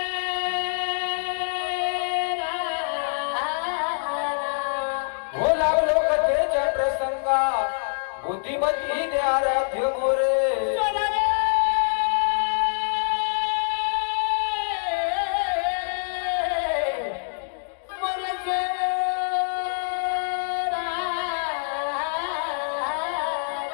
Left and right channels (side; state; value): right; silent; digital silence